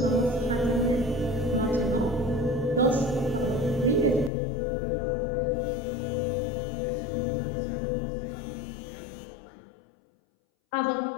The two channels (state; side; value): drops out; right; at 4.3 s